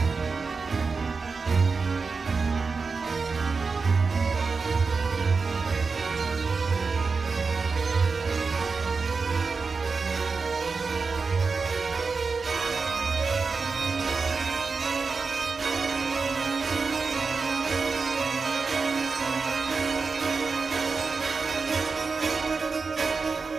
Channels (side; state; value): left; quieter; 4.6 dB